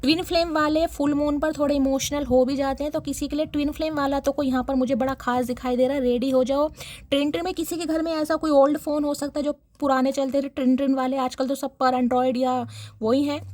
ट्विन फ्लेम वाले फुल मून पर थोड़े इमोशनल हो भी जाते हैं। तो किसी के लिए ट्विन फ्लेम वाला तो कोई यहाँ पर मुझे बड़ा खास दिखाई दे रहा है, रेडी हो जाओ। ट्रिन में किसी के घर में ऐसा कोई ओल्ड फ़ोन हो सकता है जो पुराने चलते थे ट्रिन वाले, आजकल तो सब पर एंड्रॉयड या वही है,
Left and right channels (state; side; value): identical; both; correlation 1.00